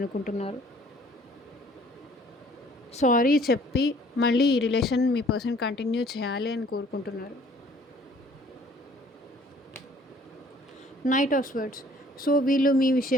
సారీ చెప్పి మళ్ళీ ఈ రిలేషన్ మీ పర్సన్ కంటిన్యూ చేయాలి అని కోరుకుంటున్నారు. Knight of swords. సో వీళ్ళు మీ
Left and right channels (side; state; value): both; normal; correlation 0.56